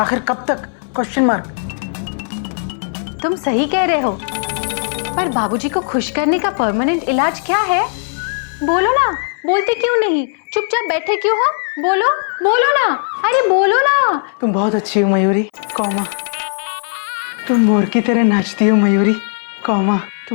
कब तक? Question mark. तुम सही कह रहे हो, पर बाबूजी को खुश करने का परमानेंट इलाज क्या है? बोलो ना, बोलते क्यों नहीं? चुपचाप बैठे क्यों हो? बोलो बोलो ना, अरे बोलो ना। तुम बहुत अच्छी हो मयूरी, कौमा। तुम मोर की तरह नाचती हो मयूरी, कौमा।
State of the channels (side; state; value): right; silent; 62 dB below the other